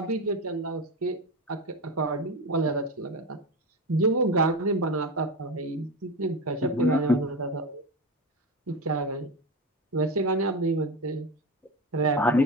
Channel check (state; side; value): normal; both; correlation 0.21